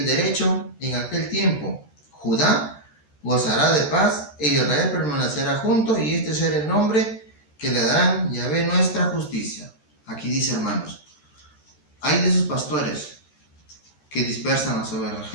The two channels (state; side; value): late; right; 13 ms